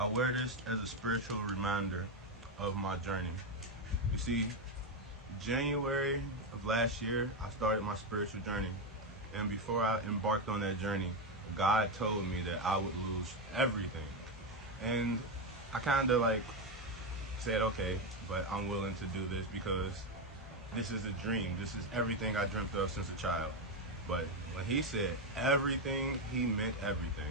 wear this as a spiritual reminder of my journey. You see, January of last year, I started my spiritual journey. And before I embarked on that journey, God told me that I would lose everything. And I kind of said, okay, but I'm willing to do this because this is a dream. This is everything I dreamt of since a child. But when he said everything, he meant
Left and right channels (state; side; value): normal; both; correlation 0.08